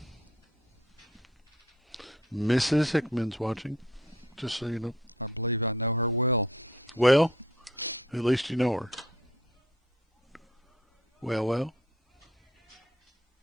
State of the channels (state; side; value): normal; both; correlation 0.59